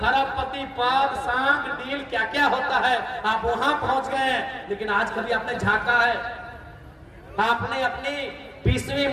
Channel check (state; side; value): identical; both; correlation 1.00